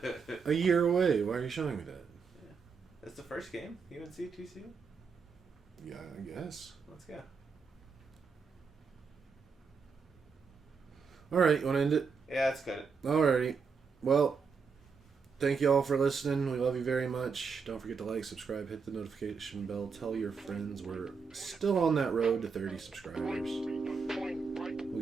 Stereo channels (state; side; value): quieter; left; 5.4 dB